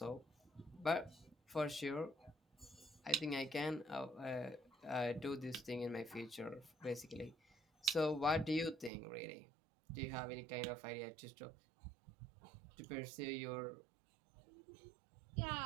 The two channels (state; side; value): drops out; left; at 8.9 s